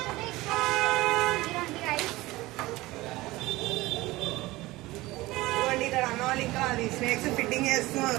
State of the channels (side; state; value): left; quieter; 19.4 dB